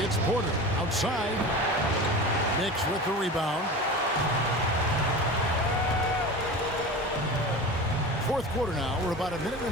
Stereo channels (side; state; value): both; normal; correlation 0.32